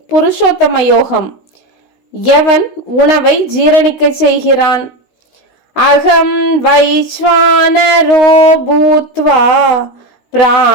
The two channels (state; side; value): late; right; 16 ms